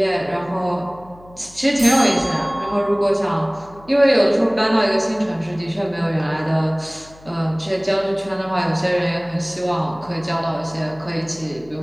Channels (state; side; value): noise; left; hum, 23 dB below the sound